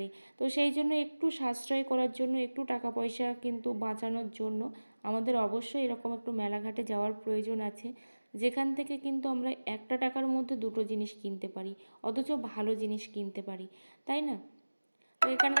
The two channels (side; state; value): both; inverted; correlation -1.00